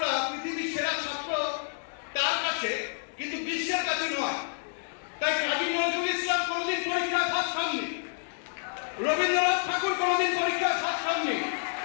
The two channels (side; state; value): right; silent; digital silence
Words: পৃথিবীর সেরা ছাত্র তার কাছে, কিন্তু বিশ্বের কাছে নয়। তাই কাজী নজরুল ইসলাম কোনোদিন পরীক্ষায় ফার্স্ট হননি, রবীন্দ্রনাথ ঠাকুর কোনোদিন পরীক্ষায় ফার্স্ট হননি,